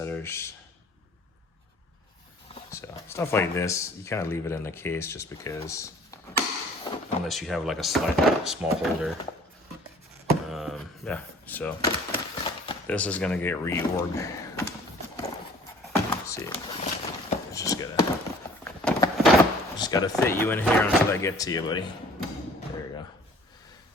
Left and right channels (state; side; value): normal; both; correlation 0.52